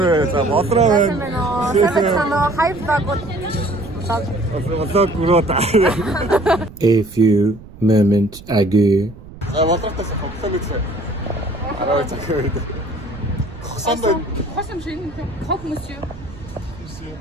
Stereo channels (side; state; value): right; noise; rumble, 17 dB below the sound